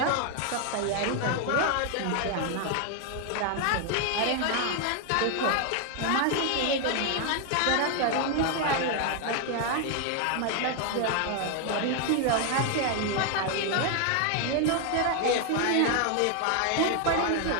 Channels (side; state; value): both; different; correlation 0.00